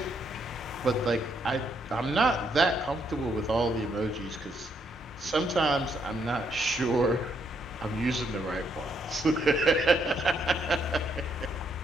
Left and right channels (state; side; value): normal; both; correlation 0.74